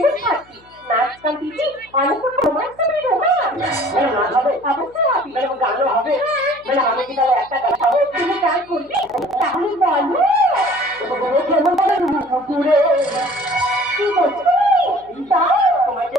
থাকবে নাচ গান দিদি অনেক রোমান্স হবে নাচ হবে অবশ্যই হবে গানও হবে আমি কি তাহলে একটা গান পাবো তুমি গান করবি তাহলে বলো কেমন বলে পুকুরে কি বলছো দাও তোমাকে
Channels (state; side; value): noise; left; hum, 29 dB below the sound